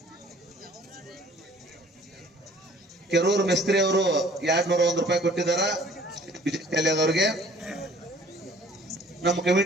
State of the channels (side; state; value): both; normal; correlation 0.53